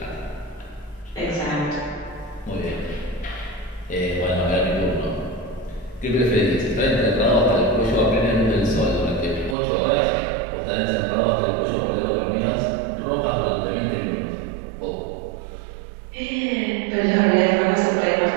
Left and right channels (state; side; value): drops out; left; at 9.6 s